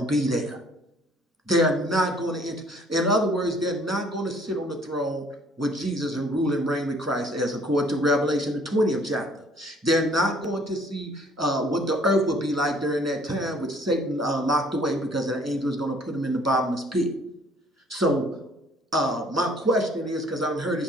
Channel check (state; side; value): normal; both; correlation 0.59